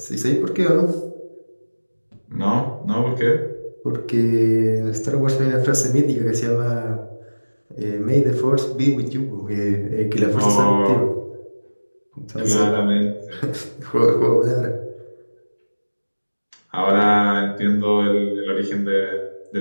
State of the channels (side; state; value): both; inverted; correlation -1.00